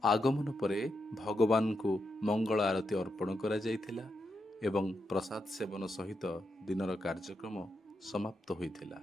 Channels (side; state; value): both; normal; correlation 0.84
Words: आगमन परे भगवान को मंगल आरती अर्पण करा जाइथिला एवं प्रसाद सेवन सहित दिनर कार्यक्रम समाप्त होइथिला।